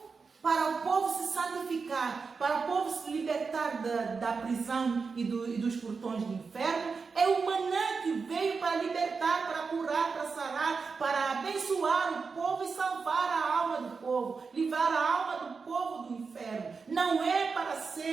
povo se santificar, para o povo se libertar da prisão e dos portões do inferno. É o maná que veio para libertar, para curar, para sarar, para abençoar o povo e salvar a alma do povo, livrar a alma do povo do inferno. Não é para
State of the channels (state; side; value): quieter; left; 4.9 dB